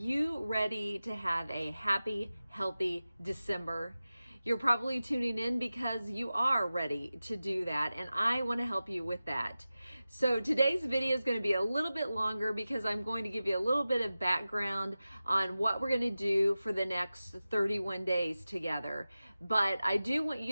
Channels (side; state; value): both; inverted; correlation -0.95